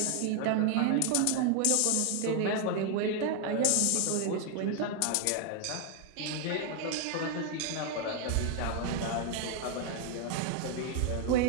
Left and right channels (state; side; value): different; both; correlation 0.01